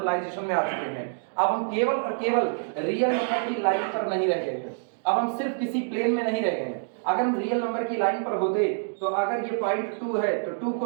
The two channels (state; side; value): silent; left; digital silence